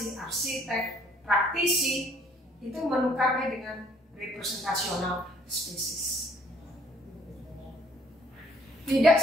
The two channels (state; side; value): normal; both; correlation 0.61